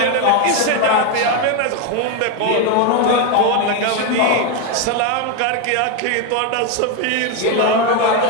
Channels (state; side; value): different; both; correlation 0.02